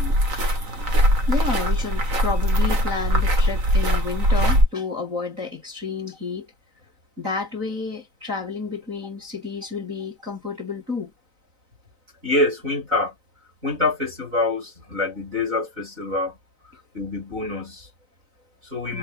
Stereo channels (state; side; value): late; left; 3.9 ms